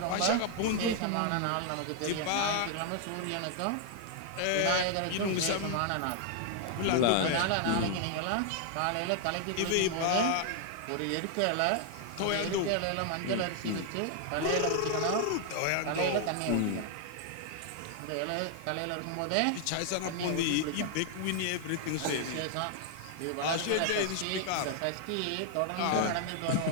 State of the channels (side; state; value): both; different; correlation 0.00